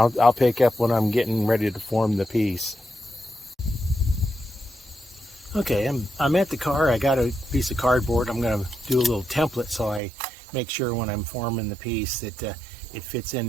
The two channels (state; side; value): drops out; left; at 10.0 s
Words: pick up when I'm getting ready to form the piece. Okay, I'm at the car. I got a piece of cardboard. I'm going to do a little template so I make sure when I'm forming the piece that it fits in